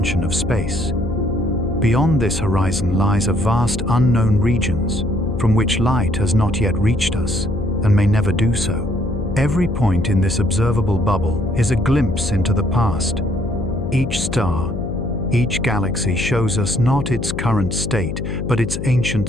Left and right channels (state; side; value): noise; left; hum, 5 dB below the sound